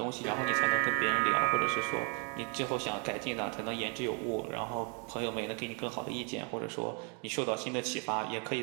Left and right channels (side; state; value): left; quieter; 37.9 dB